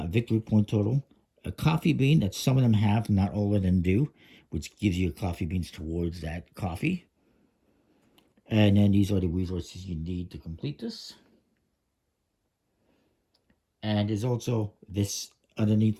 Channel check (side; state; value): both; identical; correlation 1.00